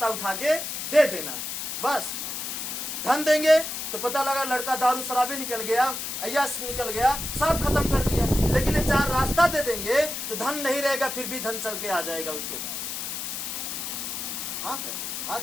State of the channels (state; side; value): noise; left; hiss, 5 dB below the sound